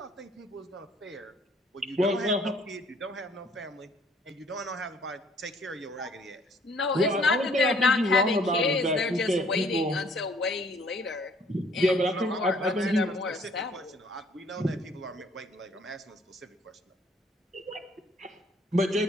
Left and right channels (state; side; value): normal; both; correlation 0.60